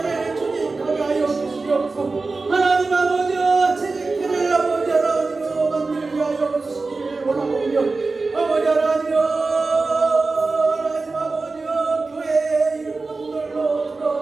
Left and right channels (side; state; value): left; quieter; 3.8 dB